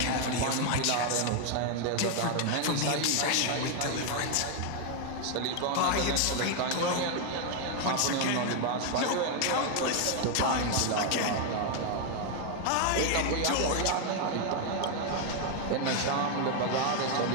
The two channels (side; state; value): both; different; correlation 0.01